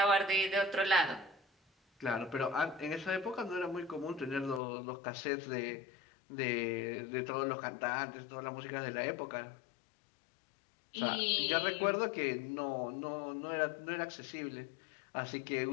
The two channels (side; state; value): right; drops out; at 4.6 s